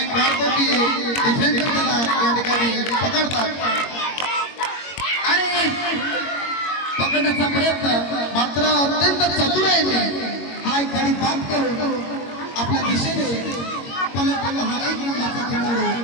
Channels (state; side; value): late; right; 21 ms